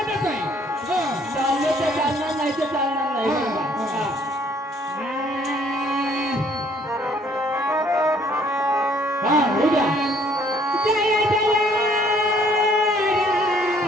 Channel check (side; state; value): both; normal; correlation 0.61